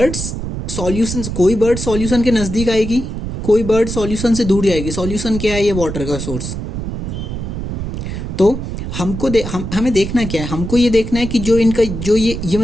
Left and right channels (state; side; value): noise; right; rumble, 5 dB below the sound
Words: सॉल्यूशन, कोई बर्ड सॉल्यूशन के नज़दीक आएगी, कोई बर्ड सॉल्यूशन से दूर जाएगी। सॉल्यूशन क्या है? ये वाटर का सोर्स। तो हमें देखना क्या है? हमको ये देखना है कि जो इनका जो ये